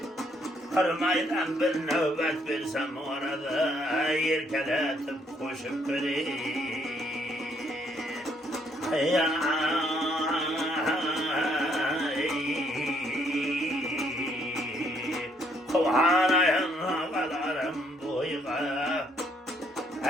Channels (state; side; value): normal; both; correlation 0.69